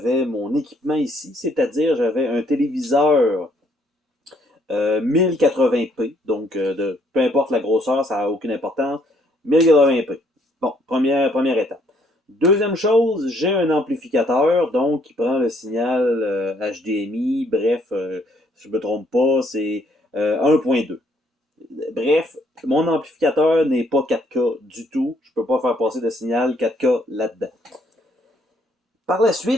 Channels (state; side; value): normal; both; correlation 0.67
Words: mon équipement ici, c'est-à-dire j'avais un téléviseur 1080p, donc peu importe la grosseur, ça n'a aucune importance. 1080p. Bon, première étape. Deuxième chose, j'ai un amplificateur, donc qui prend le signal HDMI, bref, si je ne me trompe pas, c'est 1.2. Bref, mon amplificateur n'est pas 4K du tout. Je ne peux pas faire passer de signal 4K là-dedans. Par la